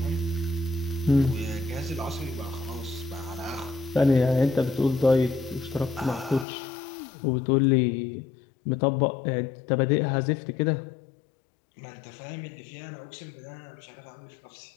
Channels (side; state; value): right; drops out; at 6.5 s